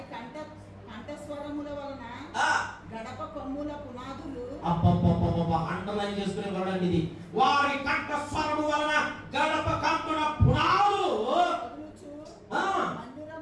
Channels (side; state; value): both; identical; correlation 1.00